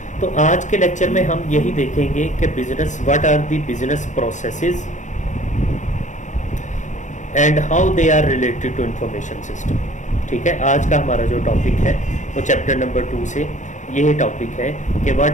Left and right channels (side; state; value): right; late; 0.35 ms